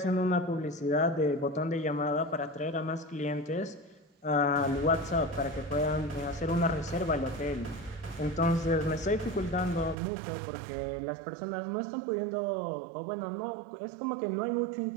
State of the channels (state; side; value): drops out; left; at 10.0 s